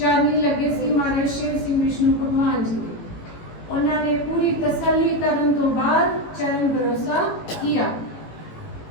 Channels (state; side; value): late; right; 18 ms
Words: लगे सी महाराज शेर सिंह विष्णु भगवान जी के। उन्होंने पूरी तसल्ली करने तो बाद चरण भरोसा किया।